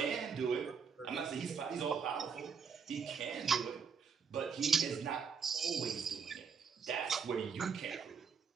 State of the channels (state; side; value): quieter; left; 6.2 dB